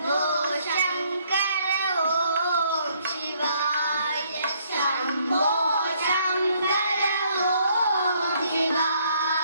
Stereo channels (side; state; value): both; inverted; correlation -0.67